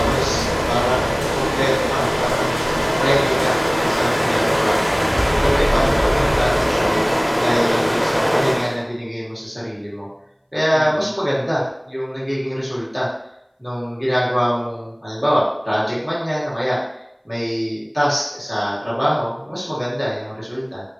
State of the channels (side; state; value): both; identical; correlation 1.00